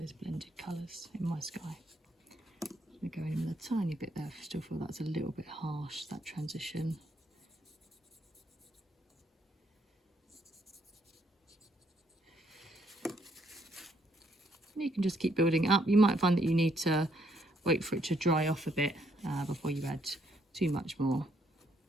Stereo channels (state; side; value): normal; both; correlation 0.71